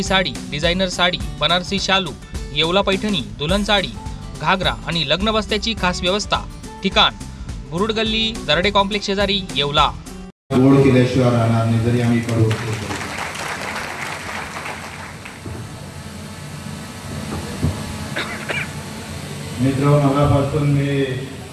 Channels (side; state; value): both; identical; correlation 1.00